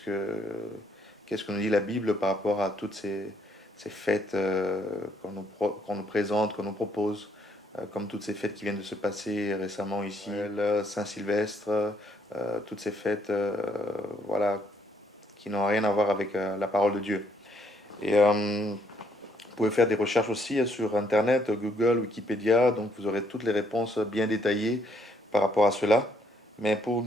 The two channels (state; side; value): normal; both; correlation 0.70